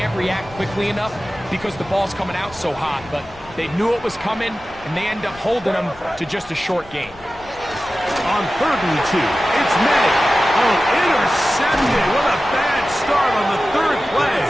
react quickly enough because the ball's coming out so hot, but they knew it was coming, and they end up holding them to just a short gain. On 3rd and 2, it's May. Oh, intercepted. What a bad start on the 3rd play.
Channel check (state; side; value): noise; left; rumble, 22 dB below the sound